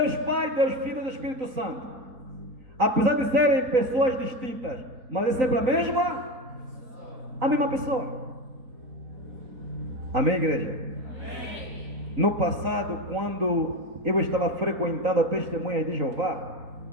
Pai, Deus Filho e Espírito Santo. Apesar de serem pessoas distintas, mas é sempre a mesma pessoa. Amém, igreja? Amém. No passado, quando eu estava frequentando a Testemunha de Jeová,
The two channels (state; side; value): late; left; 3.9 ms